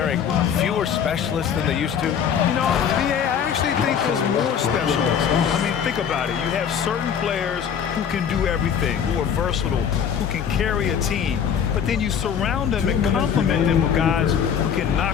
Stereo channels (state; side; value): quieter; right; 7.8 dB